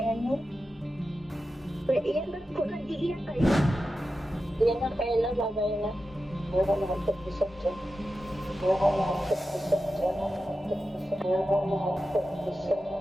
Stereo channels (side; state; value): both; normal; correlation 0.91